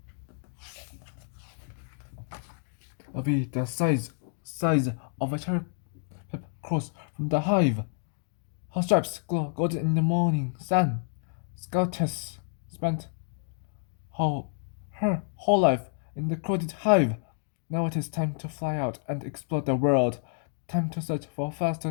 A bee the size of a cherry pepper cross from the hive. Her stripes glow golden in the morning sun. Scoutess spent her whole life in the crowded hive. Now it is time to fly out and explore the world. Time to search for flowers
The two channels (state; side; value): silent; right; digital silence